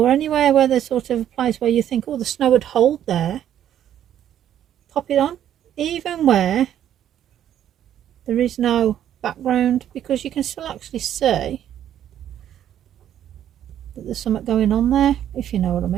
anywhere where there's sort of a place where you think, oh, the snow would hold there, pop it on. Even where there is no background, because you can still actually see that there's something going on there, if you know what I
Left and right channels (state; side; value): quieter; left; 10.7 dB